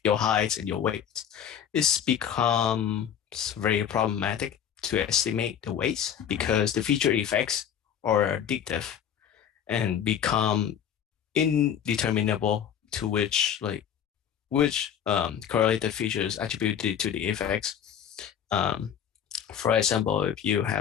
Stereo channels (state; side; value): quieter; right; 8.9 dB